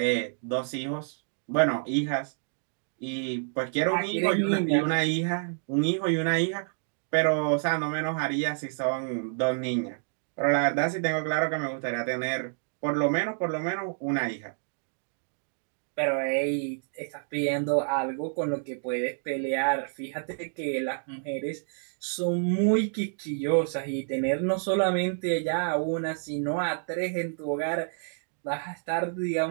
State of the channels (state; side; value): silent; left; digital silence